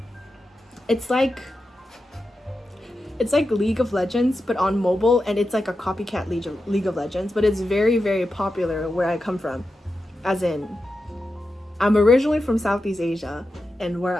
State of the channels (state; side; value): normal; both; correlation 0.90